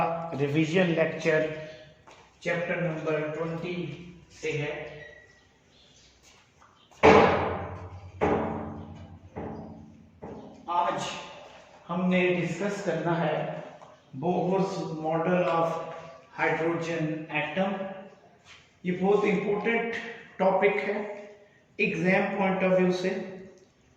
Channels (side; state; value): both; identical; correlation 1.00